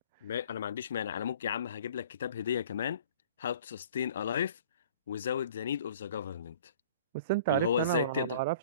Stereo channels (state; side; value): inverted; both; correlation -0.48